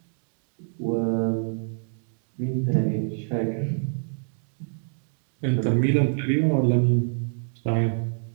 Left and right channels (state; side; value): silent; left; digital silence